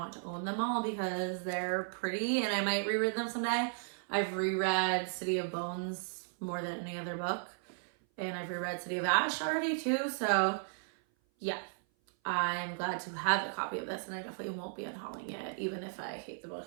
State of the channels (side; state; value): left; silent; 54 dB below the other